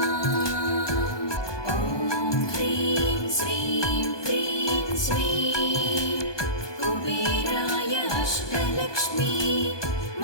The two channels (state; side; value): late; right; 1.2 ms